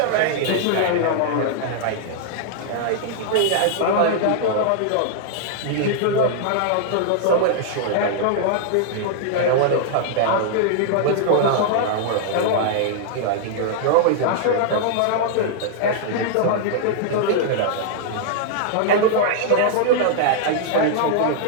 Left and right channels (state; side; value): different; both; correlation -0.01